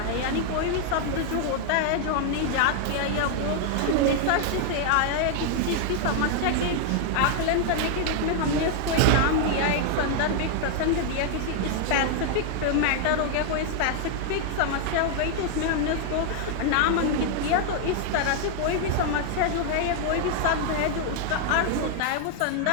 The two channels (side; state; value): both; different; correlation 0.00